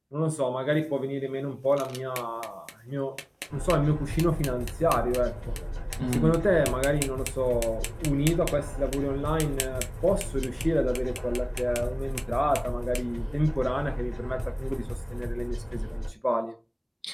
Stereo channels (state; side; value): identical; both; correlation 1.00